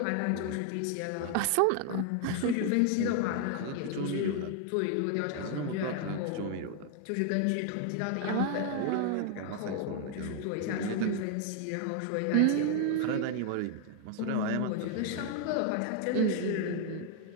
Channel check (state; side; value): different; both; correlation 0.00